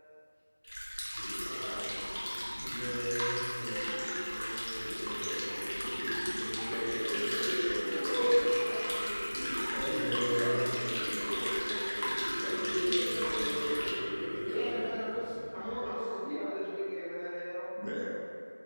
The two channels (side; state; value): both; inverted; correlation -1.00